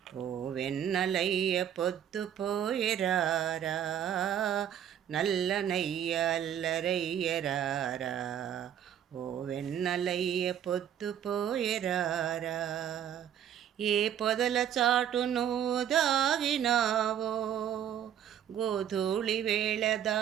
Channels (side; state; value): left; quieter; 9.8 dB